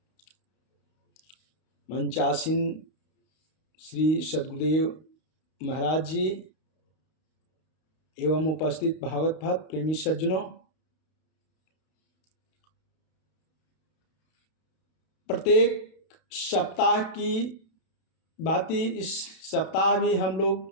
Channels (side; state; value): right; late; 32 ms